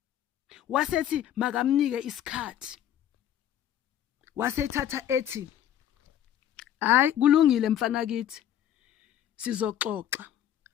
Wasethi makamnike isikhathi. Wasethatha ethi, "Hayi kulungile mfana kithi. Sizoxoxa.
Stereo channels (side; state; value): right; quieter; 10.9 dB